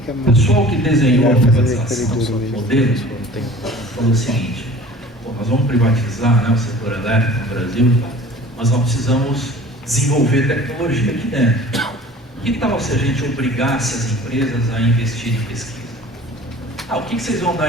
o mais. pessoal que desenhou a Vai fazer privatização corredor do mesmo. modelo falou o seguinte: nós vamos privatizar, né, o setor elétrico no Brasil, mas nós precisamos desenvolver tecnologia aqui dentro. Que tal se a gente obrigasse as empresas a investir em pesquisa? O que vocês vão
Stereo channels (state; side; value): normal; both; correlation 0.45